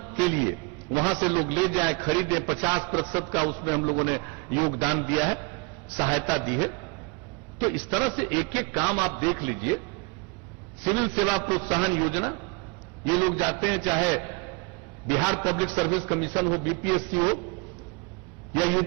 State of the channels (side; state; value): left; quieter; 30.1 dB